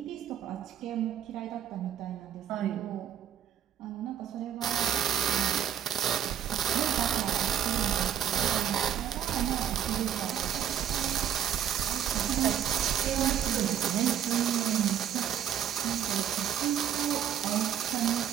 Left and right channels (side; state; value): left; quieter; 9.9 dB